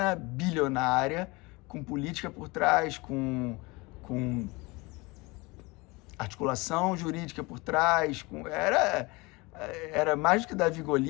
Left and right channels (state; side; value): quieter; right; 24.6 dB